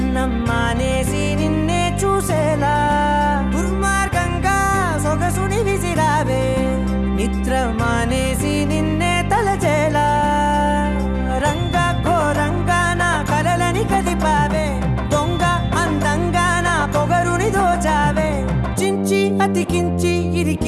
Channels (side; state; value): both; identical; correlation 1.00